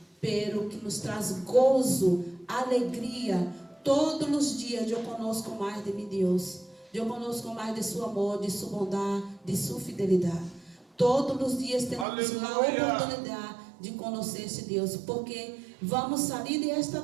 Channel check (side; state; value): left; drops out; at 12.1 s